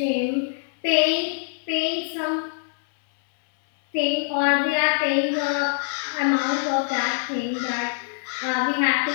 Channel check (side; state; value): right; silent; 60 dB below the other